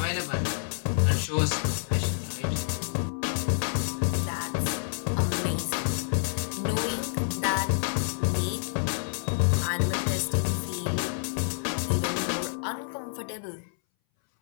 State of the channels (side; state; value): right; silent; 59 dB below the other